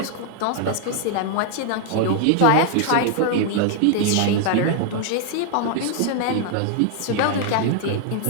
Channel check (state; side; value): different; both; correlation 0.00